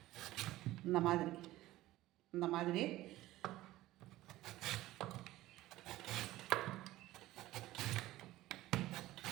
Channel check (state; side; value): quieter; left; 16.5 dB